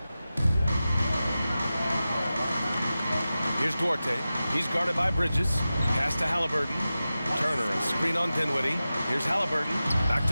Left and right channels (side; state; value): both; inverted; correlation -0.94